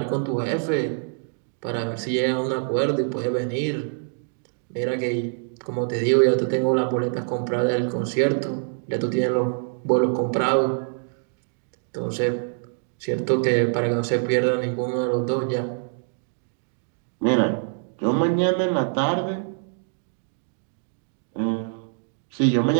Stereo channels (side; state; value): left; silent; 62 dB below the other